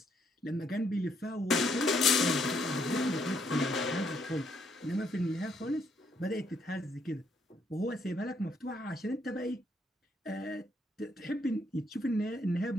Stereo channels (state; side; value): normal; both; correlation 0.72